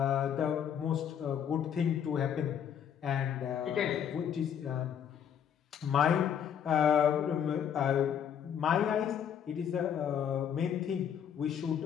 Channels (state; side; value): quieter; right; 8.6 dB